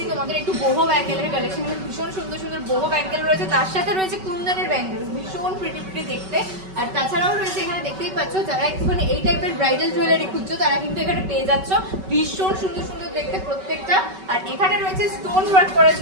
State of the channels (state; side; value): late; left; 5.3 ms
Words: তোমাদের একটু বহু ব্যাঙ্গেলের কালেকশন, ভীষণ সুন্দর সুন্দর বহু ব্যাঙ্গেল রয়েছে, তার সাথে রয়েছে কুন্দনের ব্যাঙ্গেল, ভীষণ প্রিটি প্রিটি দেখতে। আর তাছাড়াও রয়েছে এখানে দেখতেই পাচ্ছ, যারা একটুখানি এই টাইপের ব্রাইডাল জুয়েলারি খুঁজছো তারা কিন্তু এখানে পেয়ে যাচ্ছ, ভীষণ সুন্দর সুন্দর দেখতে প্রত্যেকটা। আর এখানে রয়েছে স্টোন ওয়ার্ক করা